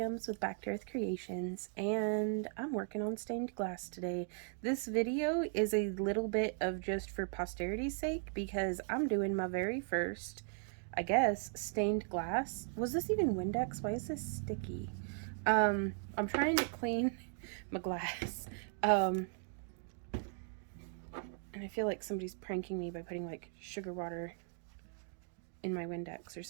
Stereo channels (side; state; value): left; silent; 52 dB below the other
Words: with Back to Earth Creations, and I'm working on stained glass today. This video is a little bit of just for posterity's sake because I'm doing my very first, I guess, stained glass. Was this even Windex? Why is this sticky? I'm trying to clean my glass. And I feel like somebody's pranking me by putting like sugar water in my Windex or